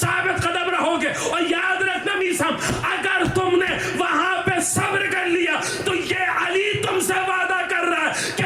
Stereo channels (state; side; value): identical; both; correlation 1.00